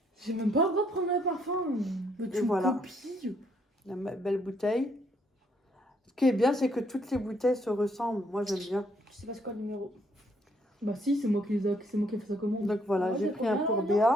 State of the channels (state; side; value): normal; both; correlation 0.70